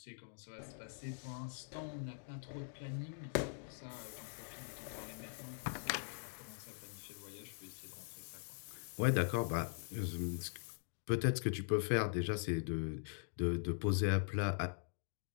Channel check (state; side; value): silent; right; digital silence